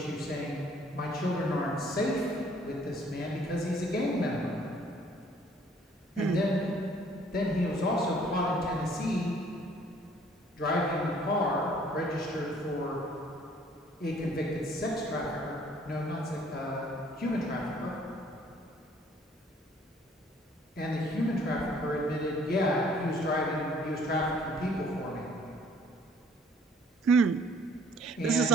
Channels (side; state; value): both; normal; correlation 0.58